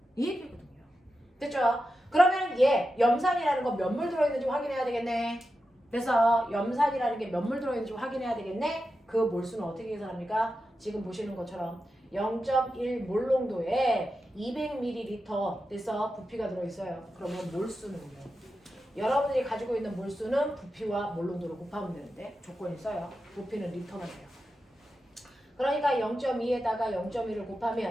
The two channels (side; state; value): both; normal; correlation 0.90